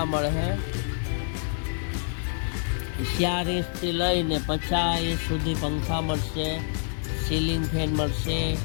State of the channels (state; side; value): silent; right; digital silence